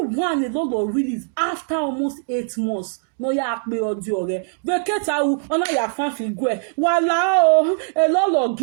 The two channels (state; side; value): silent; left; 65 dB below the other